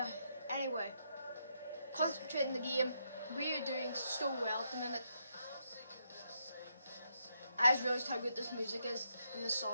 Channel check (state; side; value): inverted; both; correlation -0.78